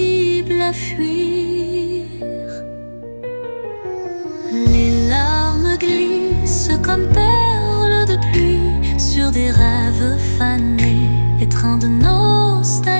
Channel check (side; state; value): both; inverted; correlation -1.00